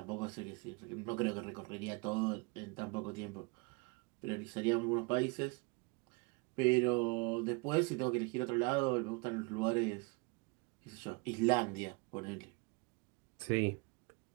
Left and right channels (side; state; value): left; quieter; 29.7 dB